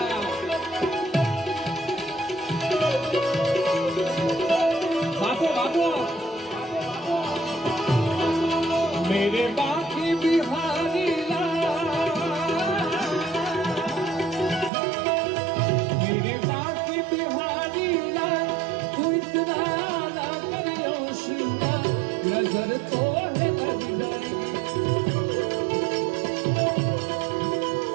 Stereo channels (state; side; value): drops out; left; at 14.7 s